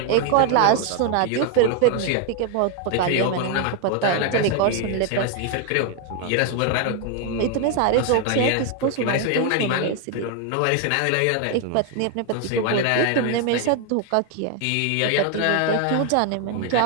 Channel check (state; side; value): different; both; correlation 0.01